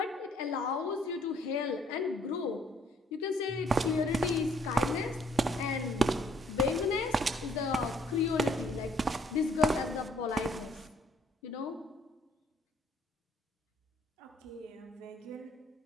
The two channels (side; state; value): both; normal; correlation 0.64